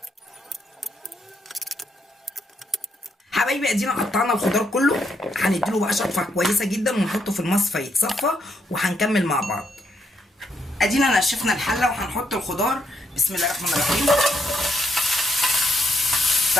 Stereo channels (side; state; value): both; normal; correlation 0.77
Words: حبايبي ادينا قطعنا الخضار كله، هنديله بقى شطفه كويسه جدا ونحطه في المصفى يتصفى، وهنكمل مع بعض. ادينا نشفنا الحله وهنحط الخضار. بسم الله الرحمن الرحيم.